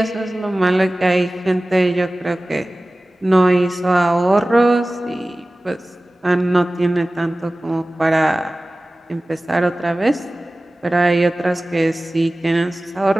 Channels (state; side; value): normal; both; correlation 0.97